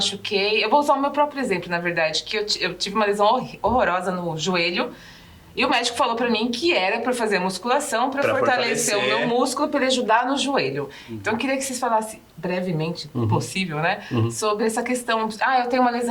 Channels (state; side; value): identical; both; correlation 1.00